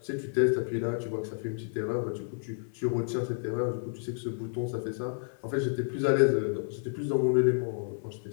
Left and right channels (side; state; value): right; silent; 57 dB below the other